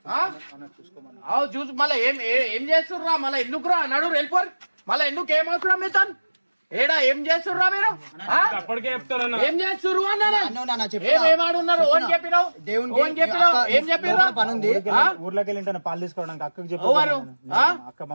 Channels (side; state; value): both; inverted; correlation -1.00